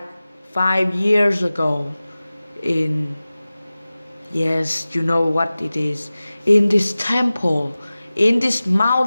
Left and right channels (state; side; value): inverted; both; correlation -0.97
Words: 5 years ago in, yes, you know what it is, in this temple, in this